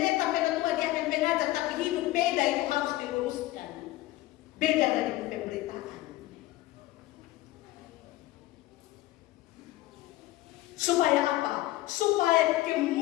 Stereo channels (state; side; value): quieter; right; 17.0 dB